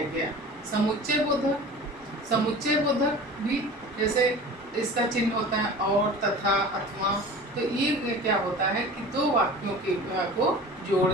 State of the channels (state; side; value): normal; both; correlation 0.39